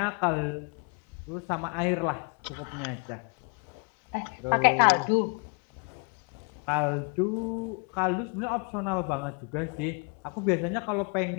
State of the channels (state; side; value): quieter; right; 37.8 dB